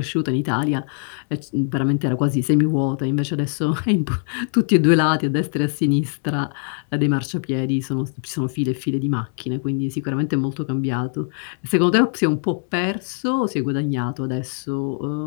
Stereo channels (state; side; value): silent; right; digital silence